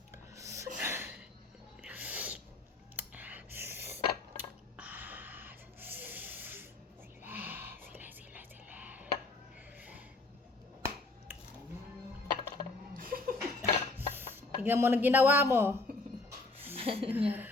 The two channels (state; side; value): quieter; right; 3.3 dB